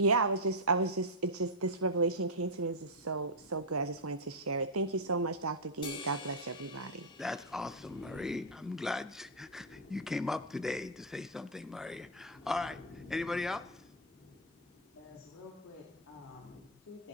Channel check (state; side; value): normal; both; correlation -0.05